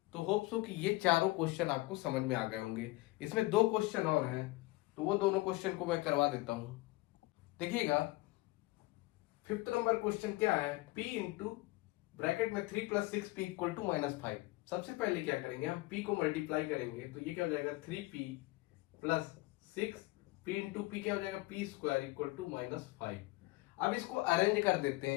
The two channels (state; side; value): quieter; right; 21.0 dB